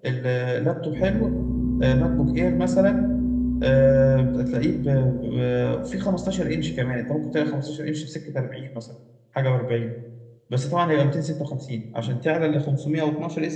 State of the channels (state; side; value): identical; both; correlation 1.00